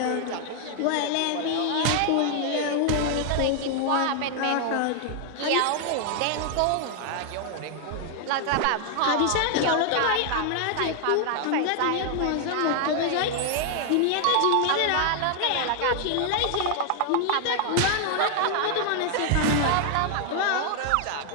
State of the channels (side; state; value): both; different; correlation 0.00